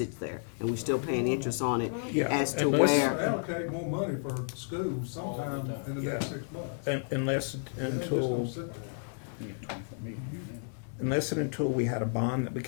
there, and we still paying interest on it Yeah, as to unless- where, Allocate more money for schools sometime in the next Yeah. 6 months. Unless It ain't just until gonna sit there. You get 24 million. unless and until we had a bond that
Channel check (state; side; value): silent; right; 57 dB below the other